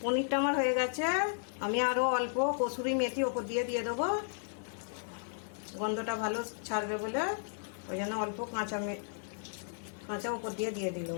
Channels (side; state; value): right; silent; digital silence